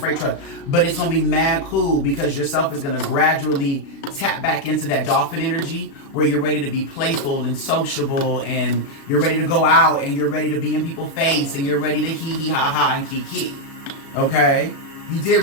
truck. But it's going to be mad cool, because yourself is going to gradually tap back into that dolphin energy where you're ready to be playful and sociable, and you're ready to go out, and you're ready to be in people's face, and you're ready to hee hee ha ha and kiki. Okay? You did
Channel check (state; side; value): late; right; 36 ms